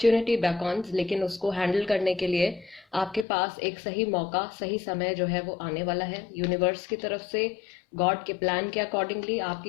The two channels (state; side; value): drops out; right; at 3.2 s